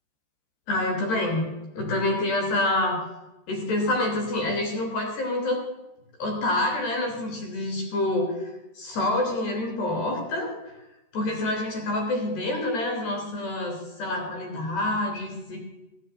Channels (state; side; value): late; right; 13 ms